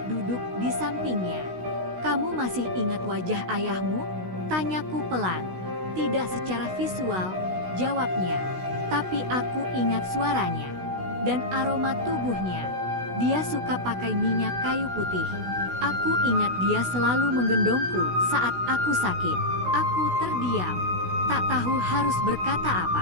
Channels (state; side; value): late; left; 16 ms